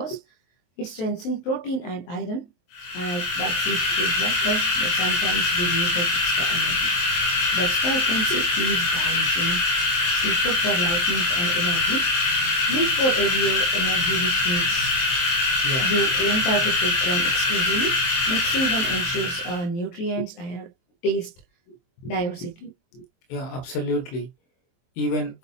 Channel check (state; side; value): late; right; 23 ms